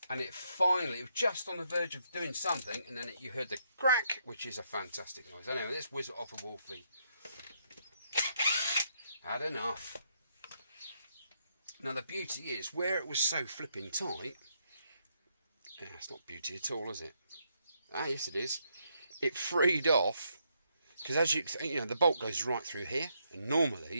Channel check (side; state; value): both; inverted; correlation -0.76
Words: and it finally, it was just on the verge of doing something, and then you heard the crack, which is a fantastic noise. Anyway, let's whiz it off a Wolfie. Had enough. Now the beauty is, where it was so flipping tight, yeah, it's not beauty at all, is it? Ah, yes it is. It freed off. Because as you know, the bolt goes right through here, and